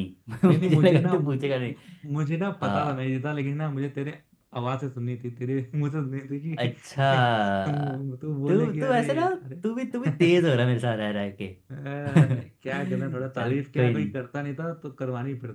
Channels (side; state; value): both; identical; correlation 1.00